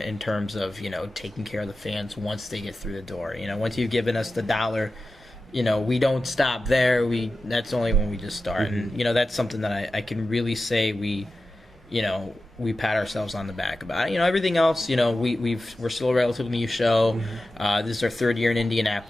terms of, taking care of the fans once they get through the door. Once you've given us the dollar, we don't stop there. That's only when we just start. And, that's something that I can really say we pat ourselves on the back about. Everything else, we're still a relatively new show. This is our third year in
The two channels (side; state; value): both; normal; correlation 0.93